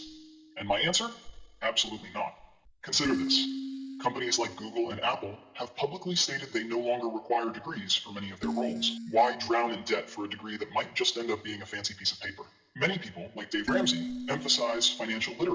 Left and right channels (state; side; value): identical; both; correlation 1.00